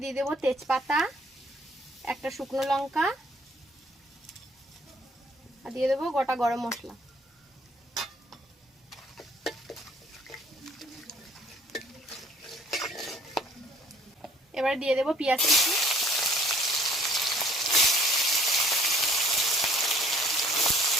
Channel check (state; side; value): normal; both; correlation 0.57